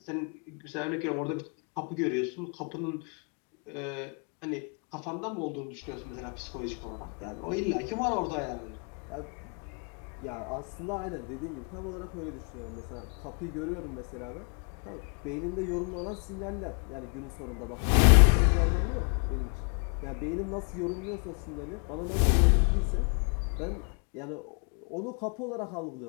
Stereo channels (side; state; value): right; quieter; 39.4 dB